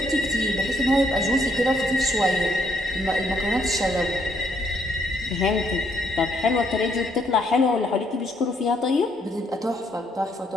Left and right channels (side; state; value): both; normal; correlation 0.71